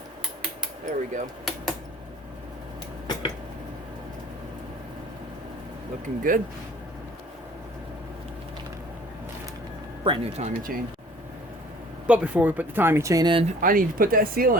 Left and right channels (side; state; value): both; normal; correlation 0.51